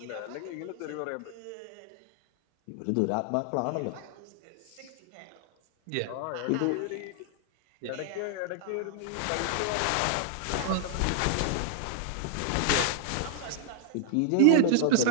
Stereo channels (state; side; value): different; both; correlation 0.00